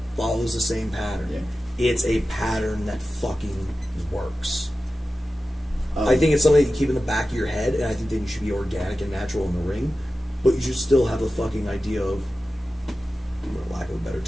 follows the same pattern. Yeah. It's a pattern that fucking works. I think it's something that you keep in the back of your head, and I think that you should be organic and natural in the ring, but you should still have the fucking idea of, for lack of a better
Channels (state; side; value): normal; both; correlation 0.94